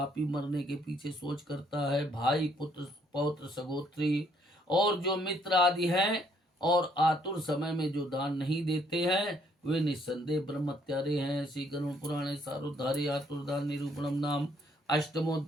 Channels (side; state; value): both; normal; correlation 0.67